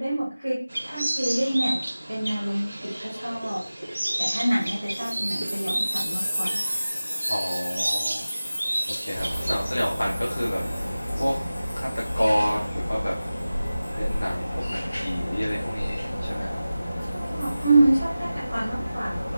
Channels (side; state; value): both; inverted; correlation -0.96